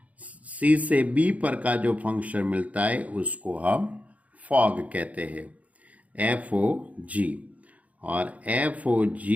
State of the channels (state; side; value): late; left; 0.069 ms